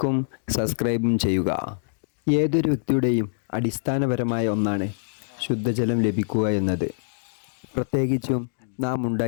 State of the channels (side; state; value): right; silent; digital silence